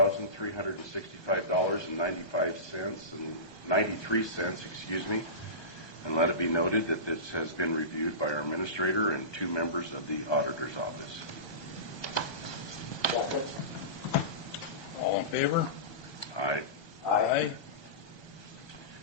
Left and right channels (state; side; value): late; right; 1.2 ms